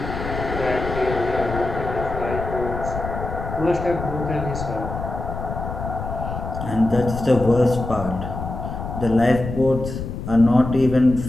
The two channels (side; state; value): left; noise; rumble, 7 dB below the sound